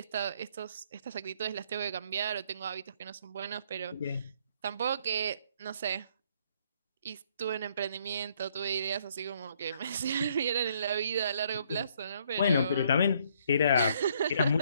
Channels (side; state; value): both; inverted; correlation -0.67